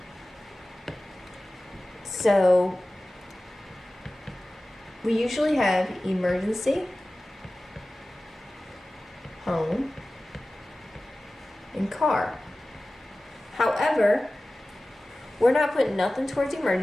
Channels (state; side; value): normal; both; correlation 0.97